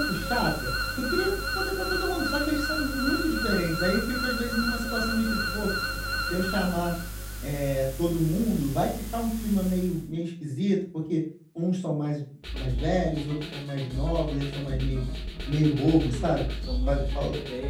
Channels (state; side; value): identical; both; correlation 1.00